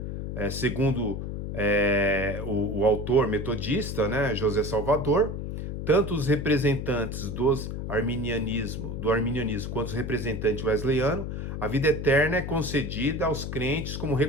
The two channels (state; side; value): noise; left; hum, 5 dB below the sound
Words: Segundo o autor metodista, né, José Salvador, tanto os representantes do arminianismo quanto os representantes wesleyano, a vida eterna é concedida aos crentes como